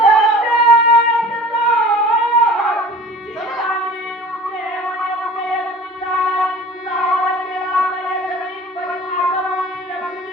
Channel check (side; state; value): both; normal; correlation 0.43